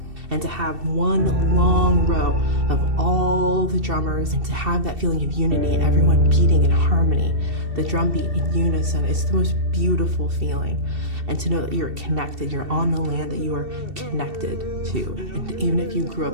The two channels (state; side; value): late; left; 2.7 ms